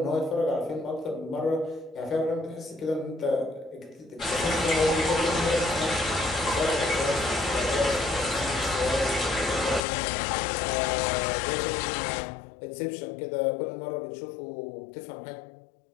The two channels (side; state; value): right; drops out; at 9.8 s